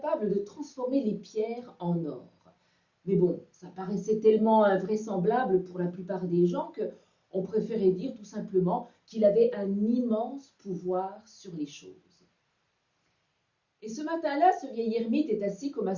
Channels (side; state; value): both; identical; correlation 1.00